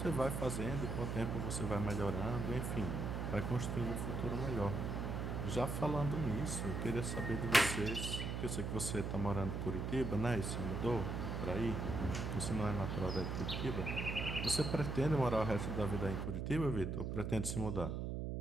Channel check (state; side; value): noise; right; hum, 2 dB below the sound